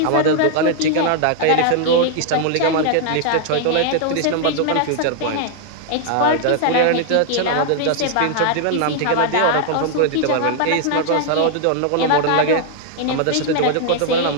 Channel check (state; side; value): different; both; correlation 0.00